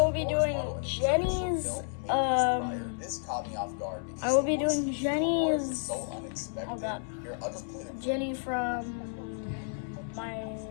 be doing Jenny's This caught me off guard because I will be doing so Jenny's unexpected. oh god. Here, I'll just play the Jenny from My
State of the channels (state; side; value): silent; right; 57 dB below the other